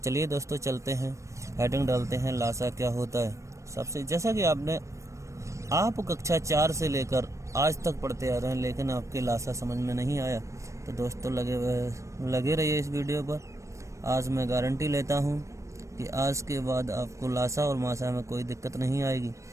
दोस्तों चलते हैं, हेडिंग डालते हैं, लासा क्या होता है। सबसे जैसा कि आप कक्षा 4 से लेकर आज तक पढ़ते आ रहे हैं, लेकिन आपके लासा समझ में नहीं आया, तो दोस्तों लगे रहिए इस वीडियो पर। आज मैं गारंटी लेता हूं कि आज के बाद आपको लासा और मासा में कोई दिक्कत नहीं आएगी।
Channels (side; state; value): left; late; 0.15 ms